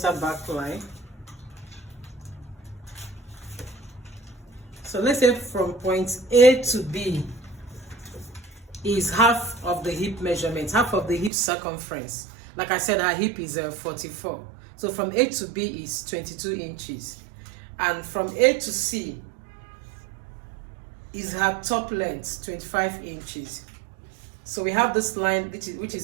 back line. So let's say from point A to B is half of the hip measurement, half of the hip circumference. Like I said, our hip is 44. So from A to B is 22 inches. And from A to C is her top length, 25 inches. So we have this line, which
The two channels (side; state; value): left; drops out; at 11.3 s